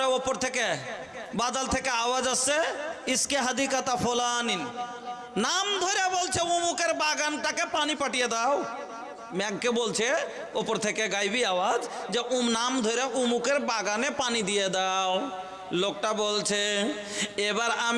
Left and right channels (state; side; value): identical; both; correlation 1.00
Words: ওপর থেকে বাদল থেকে আওয়াজ আসছে, ইসকে হাদিকাতা ফুলানিন, নাম ধরে বলছে অমুকের বাগানটাকে পানি পাঠিয়ে দাও। মেঘকে বলছে ওপর থেকে গাইবি আওয়াজ যে নাম ধরে অমুকের বাগানে পানি দিয়ে দাও। লোকটা বলছে এবার